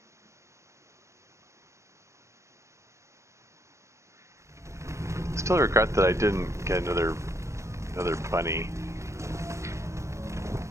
Still regret that I didn't get another bunny.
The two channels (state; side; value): late; left; 0.14 ms